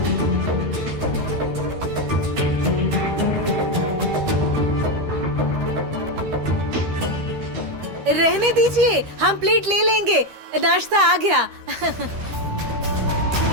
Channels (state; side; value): late; left; 13 ms